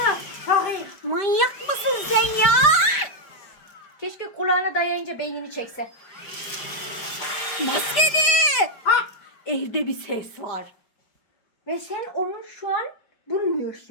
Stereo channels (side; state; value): right; late; 5.1 ms